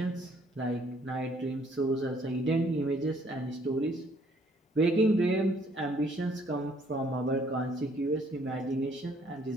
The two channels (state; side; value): normal; both; correlation 0.64